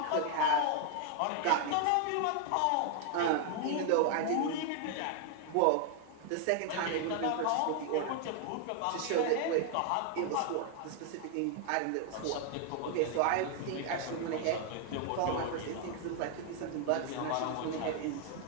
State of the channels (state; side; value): different; both; correlation 0.00